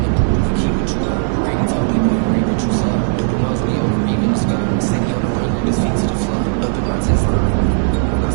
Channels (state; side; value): silent; left; digital silence